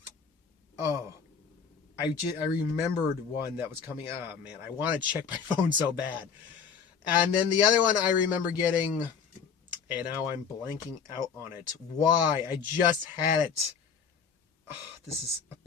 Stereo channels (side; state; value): right; quieter; 6.5 dB